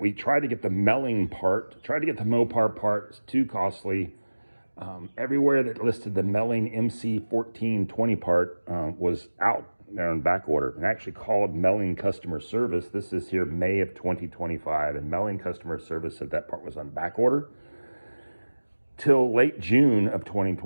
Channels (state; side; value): inverted; both; correlation -1.00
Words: tried to get the Melling part, tried to get the Mopar part. It's too costly. Everywhere that listed the Melling MC1420 part was out there on back order, and actually called Melling customer service. This is here May of 2025, and Melling customer service said that part was on back order till late June of